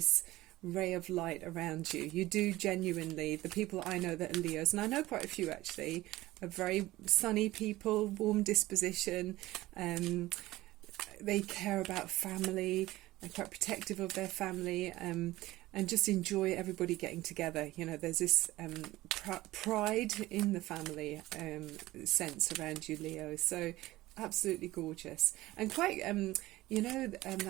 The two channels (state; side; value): quieter; left; 17.5 dB